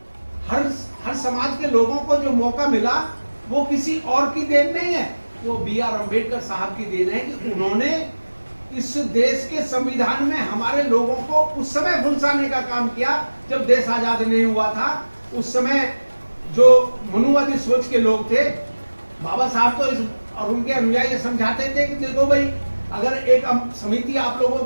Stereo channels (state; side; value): inverted; both; correlation -1.00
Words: हर समाज के लोगों को जो मौका मिला वो किसी और की देन नहीं है, वो B.R. अम्बेडकर साहब की देन है कि उन्होंने इस देश के संविधान में हमारे लोगों को उस समय फुलसाने का काम किया जब देश आजाद नहीं हुआ था। उस समय जो मनुवादी सोच के लोग थे, बाबा साहब तो और उनके अनुयायी समझाते थे कि देखो भाई, अगर एक समिति आप लोगों